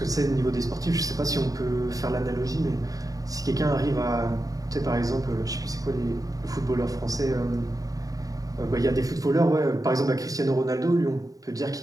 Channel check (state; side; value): late; left; 0.17 ms